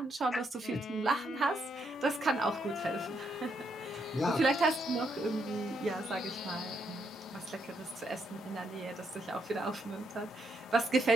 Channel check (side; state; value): both; normal; correlation 0.76